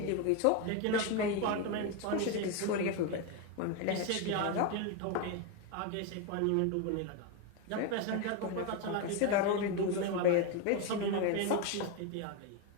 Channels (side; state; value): both; different; correlation 0.02